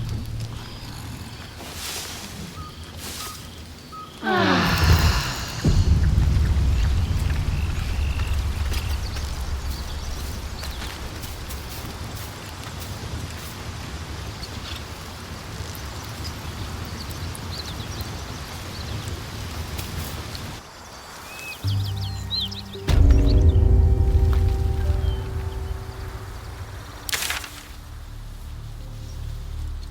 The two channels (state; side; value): identical; both; correlation 1.00